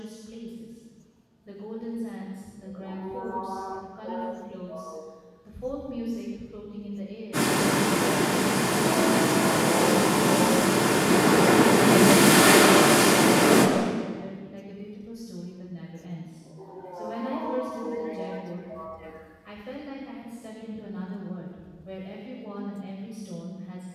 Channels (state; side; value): identical; both; correlation 1.00